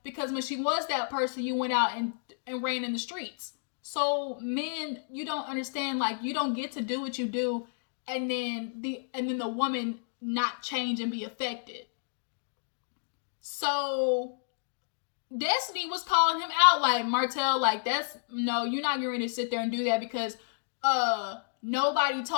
because when she was that person, you went out and ran in the streets. So men, you don't understand, like, you don't get to do what you do and then the woman not change and be affected. So Destiny was calling him out, like, Martell, like, you're not going to sit there and do that because nobody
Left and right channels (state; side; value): silent; right; digital silence